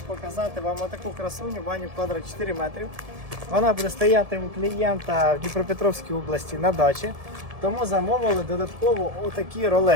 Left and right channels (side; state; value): left; late; 1.7 ms